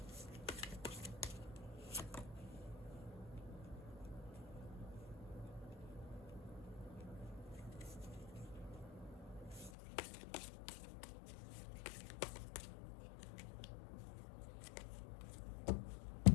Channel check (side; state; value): right; drops out; at 9.7 s